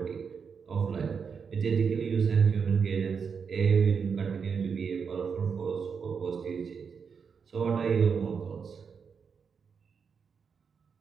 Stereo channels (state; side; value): quieter; left; 6.1 dB